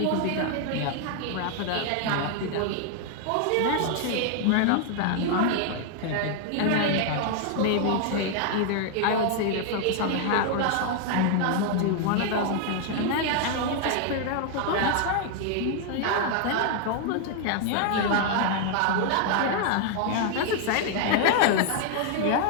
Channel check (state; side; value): different; both; correlation 0.00